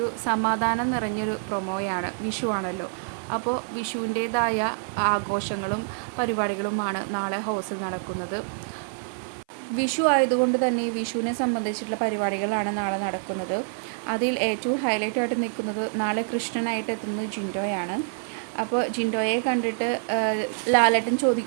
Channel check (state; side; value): silent; left; 57 dB below the other